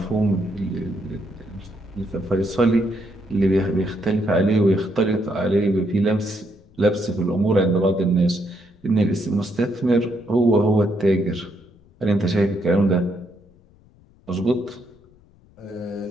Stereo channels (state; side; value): noise; left; rumble, 29 dB below the sound